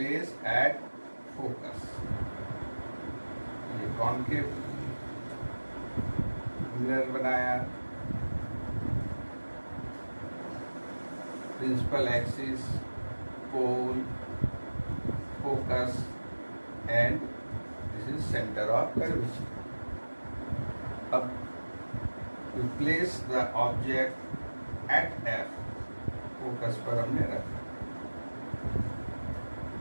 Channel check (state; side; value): inverted; both; correlation -1.00